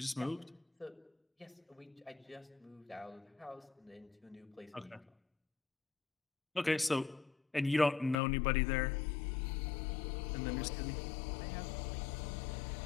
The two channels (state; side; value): drops out; right; at 8.2 s